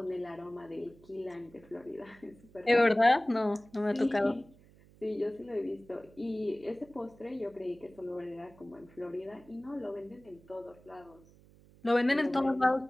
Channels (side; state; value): right; noise; hum, 25 dB below the sound